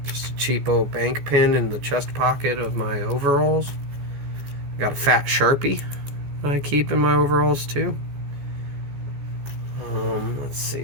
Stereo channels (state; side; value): late; left; 15 ms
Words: Just a cheapo bank pin in the chest pocket of my overalls. I got a fat Sharpie that I keep in my overalls too. Let's